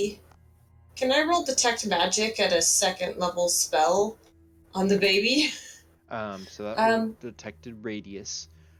Can I roll detect magic at a second level spell on the baby? So that Um, detected radius.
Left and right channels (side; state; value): both; identical; correlation 1.00